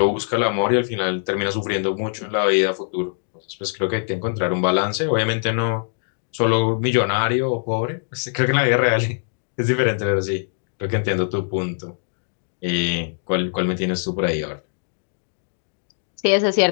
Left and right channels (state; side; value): silent; right; digital silence